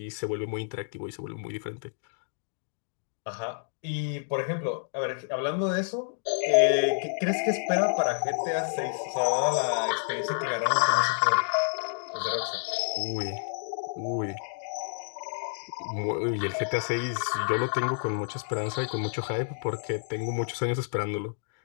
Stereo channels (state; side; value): silent; right; digital silence